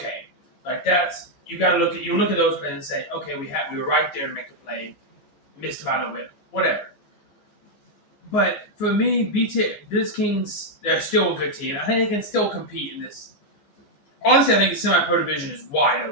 like you got to look at those plays and say, okay, we were right there to make the play, missed about a little bit, whatever. But for me, Blitz Kings, they're still a good team. I think they can still compete in this. Honestly, I think the semi-pro division is wide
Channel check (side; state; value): right; late; 14 ms